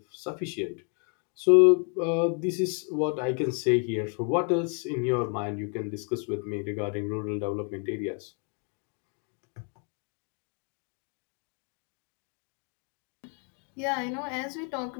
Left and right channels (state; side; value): quieter; right; 39.8 dB